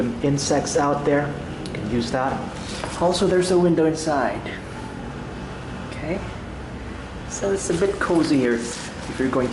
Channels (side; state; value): both; identical; correlation 1.00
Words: insects out there, you can use that. Also, there's a window inside. Okay, so it's a bit cozier if you're going